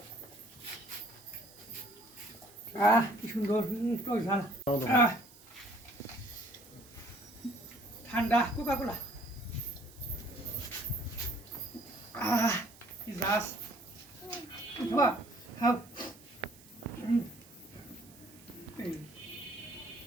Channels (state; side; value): noise; right; hiss, 22 dB below the sound